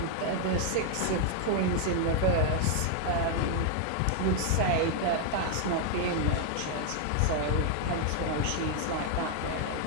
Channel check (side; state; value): both; different; correlation 0.00